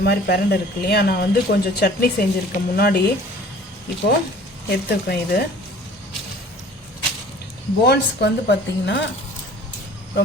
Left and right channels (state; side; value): normal; both; correlation 0.49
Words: மாதிரி பிரண்டை இருக்கு இல்லையா, நான் வந்து கொஞ்சம் சட்னி செஞ்சுருக்கேன் முன்னாடி, இப்போது எடுத்துருக்கேன். இது போன்ஸ்க்கு வந்து பார்த்திங்கன்னா